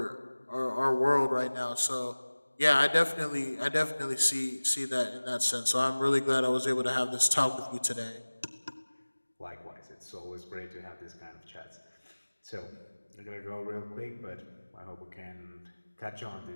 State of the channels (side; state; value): both; inverted; correlation -1.00